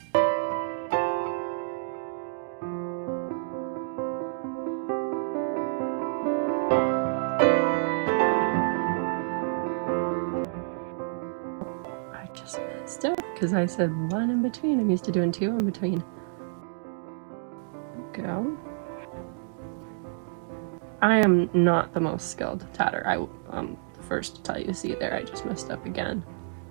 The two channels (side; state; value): left; silent; digital silence